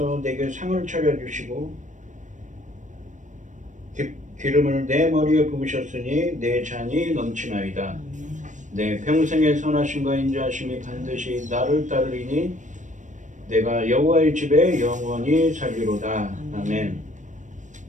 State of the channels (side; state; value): left; late; 0.36 ms